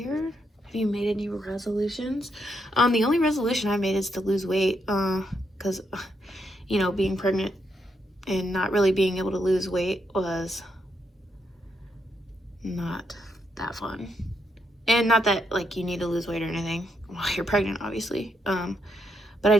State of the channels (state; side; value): normal; both; correlation 0.80